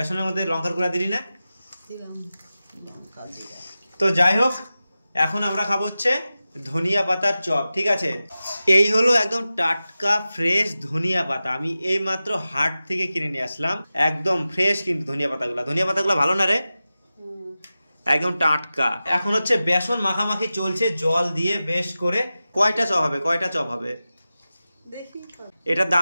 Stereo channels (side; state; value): both; inverted; correlation -0.94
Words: মধ্যে লঙ্কার গুঁড়া দিলি না? তো যাই হোক, এখন আমরা খাবো হচ্ছে ধনিয়া পাতার চপ। ঠিক আছে, এই হলো একদম টাটকা ফ্রেশ ধনিয়া পাতা। আমি এই মাত্র হাট থেকে কিনে নিয়ে আসলাম, একদম ফ্রেশ কিন্তু ধনিয়া পাতাগুলো ভালো না রে, একদম টাটকা। এখন হচ্ছে বেসন মাখামাখি চলছে জল দিয়ে বেশ করে। কয়টা চপ হবে? এটার